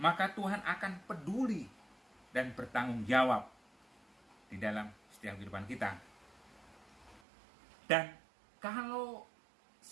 maka Tuhan akan peduli dan bertanggung jawab di dalam setiap kehidupan kita. Dan kalau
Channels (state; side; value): drops out; left; at 7.2 s